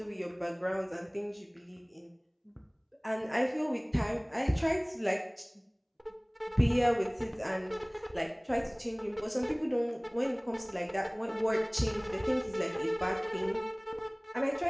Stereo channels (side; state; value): both; identical; correlation 1.00